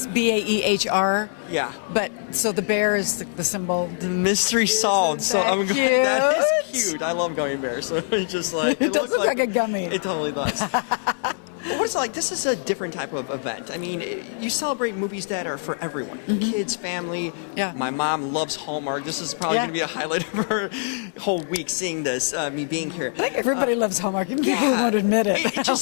Baehr. Yeah. But so the bear is the symbol. The mystery solved. So I'm going. That is cute. I love gummy bears. So it's just like it does look like a gummy. It totally does. What What's it like? This is a different type of event. I mean, you celebrate movies that are for everyone. Kids, family. Yeah. My mom loves Hallmark. This is probably going to be a highlight of her whole week seeing this, me being here. I think everybody loves Hallmark. Even people who won't admit it. It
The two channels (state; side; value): silent; right; digital silence